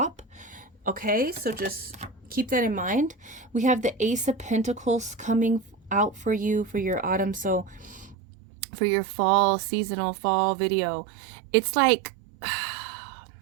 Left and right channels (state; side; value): drops out; left; at 8.2 s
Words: Okay, so just keep that in mind. We have the Ace of Pentacles coming out for you for your autumn. So for your fall, seasonal fall video, it's like,